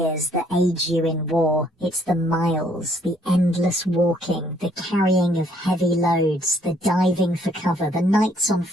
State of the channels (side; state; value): both; normal; correlation 0.66